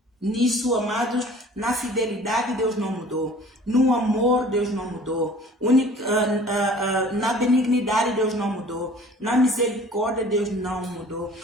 Nisso, amados, na fidelidade Deus não mudou. No amor Deus não mudou. Na benignidade Deus não mudou. Na misericórdia Deus não mudou.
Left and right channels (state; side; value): normal; both; correlation 0.48